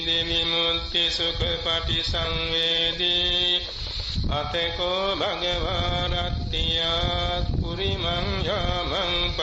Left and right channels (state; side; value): identical; both; correlation 1.00